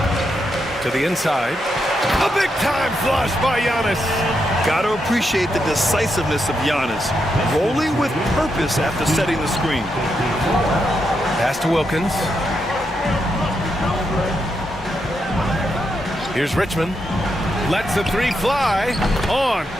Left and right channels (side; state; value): both; normal; correlation 0.82